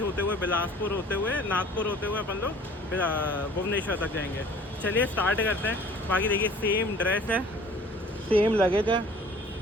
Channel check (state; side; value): normal; both; correlation 0.49